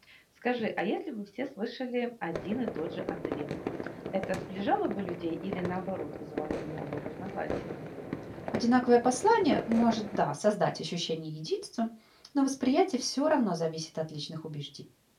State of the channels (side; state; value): both; identical; correlation 1.00